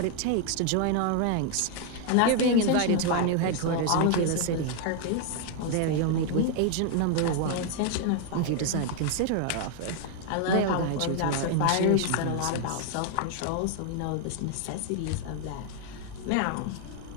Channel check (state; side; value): different; both; correlation 0.00